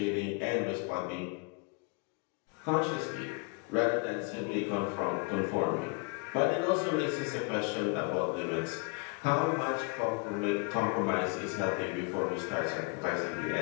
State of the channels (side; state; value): right; quieter; 34.2 dB